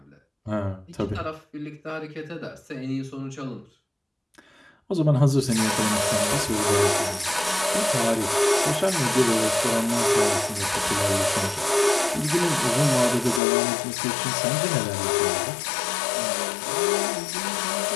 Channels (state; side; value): drops out; right; at 13.4 s